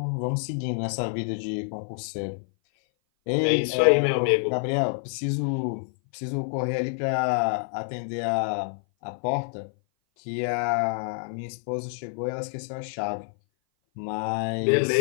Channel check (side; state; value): right; silent; 57 dB below the other